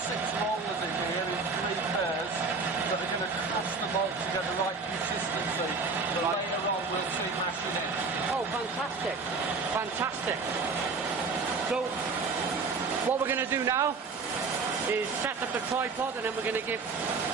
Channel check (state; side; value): quieter; left; 4.4 dB